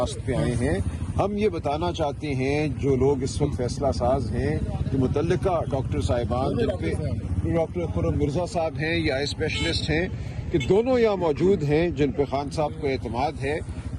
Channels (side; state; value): both; identical; correlation 1.00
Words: پہ آئے ہیں. ہم یہ بتانا چاہتے ہیں جو لوگ اس وقت فیصلہ ساز ہیں, جو متعلقہ ڈاکٹر صاحبان, جن پہ ڈاکٹر خرم مرزا صاحب ہیں یا اسپیشلسٹ ہیں, کہ دونوں یہاں موجود ہیں جن پہ خان صاحب کو اعتماد ہے.